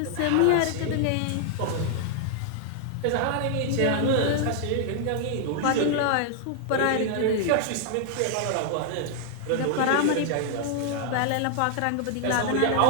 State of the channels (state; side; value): different; both; correlation -0.01